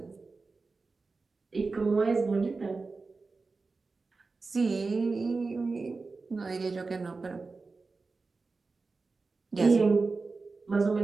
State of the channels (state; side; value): quieter; left; 4.0 dB